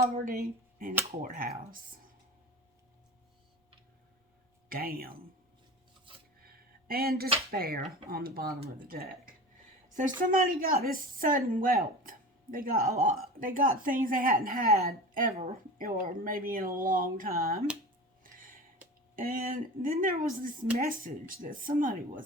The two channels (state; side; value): normal; both; correlation 0.33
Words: and a courthouse. damn. And despair on the bottom of the deck. So somebody got this sudden wealth. They got a lot. They got things they hadn't had ever, or maybe in a long time. And then there was this message that somebody